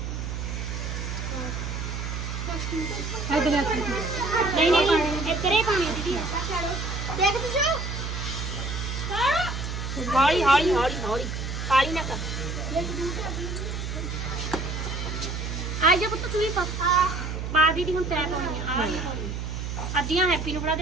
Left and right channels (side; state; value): right; noise; hum, 4 dB below the sound